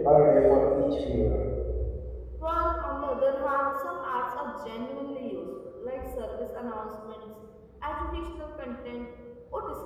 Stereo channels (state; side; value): identical; both; correlation 1.00